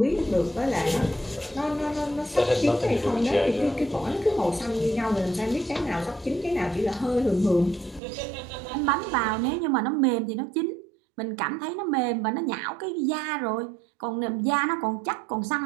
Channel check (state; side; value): drops out; left; at 8.0 s